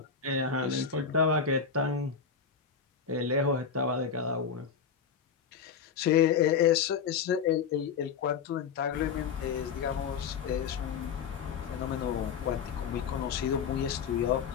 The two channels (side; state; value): right; quieter; 6.6 dB